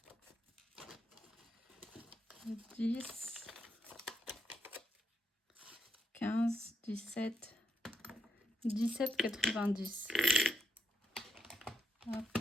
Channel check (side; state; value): both; normal; correlation 0.80